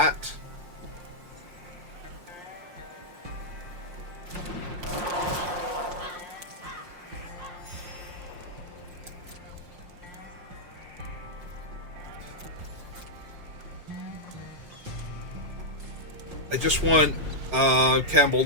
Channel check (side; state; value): left; late; 5.6 ms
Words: I just want Campbell